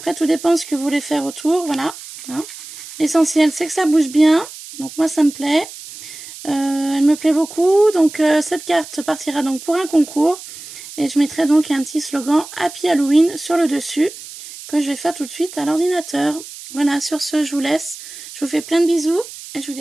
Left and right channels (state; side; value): noise; right; hiss, 14 dB below the sound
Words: tout dépend de ce que vous voulez faire autour, voilà. Hein. L'essentiel c'est que ça bouge bien. Donc moi ça me plaît. Elle me plaît beaucoup. Donc cette carte partira donc pour un concours. Et je mettrai donc un petit slogan Happy Halloween sur le dessus. Que je vais faire tout de suite à l'ordinateur. Voilà, sur ce je vous laisse. Je vous fais plein de bisous. Et je vous